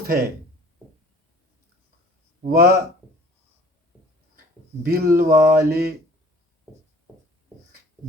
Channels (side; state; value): both; normal; correlation 0.50